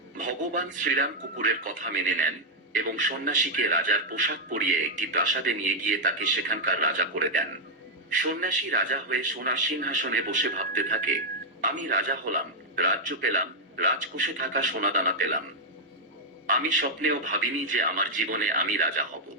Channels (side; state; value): both; normal; correlation -0.01